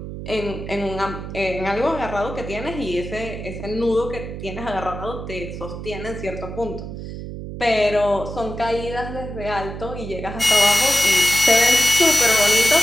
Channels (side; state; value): right; noise; hum, 9 dB below the sound